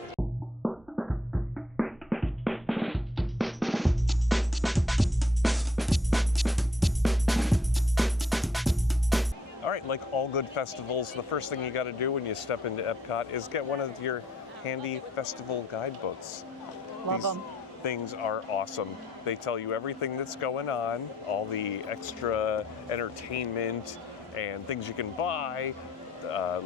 All right, like all good festivals, the first thing you got to do when you step into Epcot is get one of your handy festival guidebooks. Love them. Things are awesome. They tell you everything that's going on, all the extra entertainment and things you can buy,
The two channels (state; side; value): normal; both; correlation 0.67